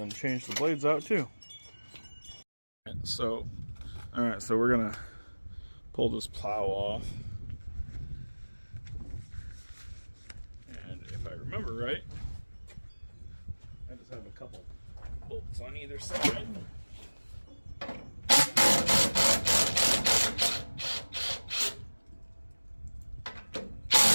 change the blades out too. So, alright, so we're gonna pull this plow off. And if I remember right, I just have a couple bolts on either side.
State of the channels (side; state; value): both; inverted; correlation -1.00